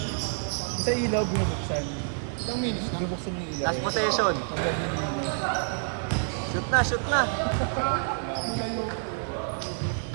Sa ilaw, binubuksan. Ilang minutes na? Bubuksan yung ilaw. Last possession. Shoot na, shoot na!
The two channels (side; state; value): left; silent; 59 dB below the other